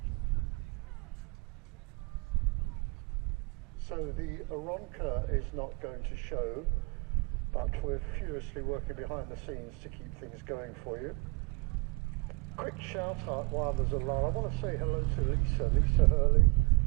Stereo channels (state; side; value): quieter; left; 28.4 dB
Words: So the Aronca is not going to show, but we're furiously working behind the scenes to keep things going for you. Quick shout out while there's a lull. I want to say hello to Lisa Hurley,